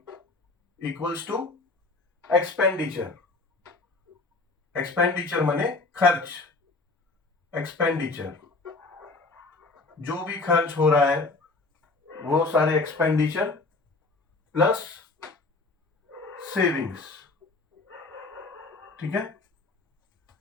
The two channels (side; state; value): right; quieter; 3.5 dB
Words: equals to expenditure. Expenditure माने खर्च। एक्सपेंडिचर, जो भी खर्च हो रहा है वो सारे एक्सपेंडिचर प्लस सेविंग्स, ठीक है।